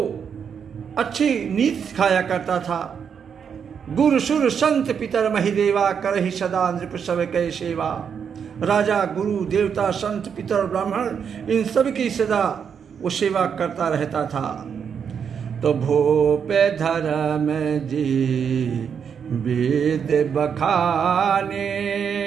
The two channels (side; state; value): left; quieter; 7.2 dB